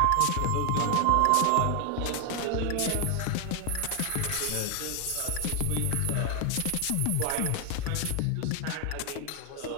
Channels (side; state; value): both; different; correlation 0.01